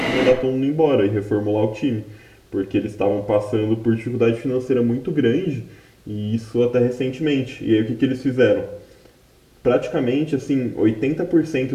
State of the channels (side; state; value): both; identical; correlation 1.00